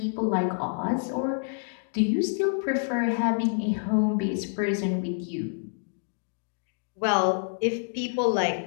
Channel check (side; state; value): right; silent; digital silence